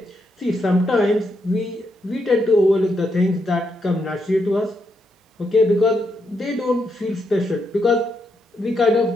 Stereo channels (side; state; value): both; normal; correlation 0.80